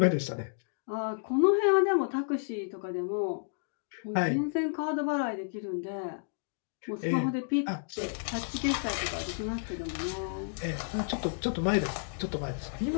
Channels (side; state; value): right; silent; digital silence